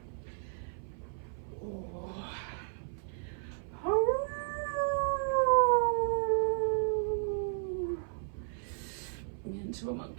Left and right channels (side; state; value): left; silent; 55 dB below the other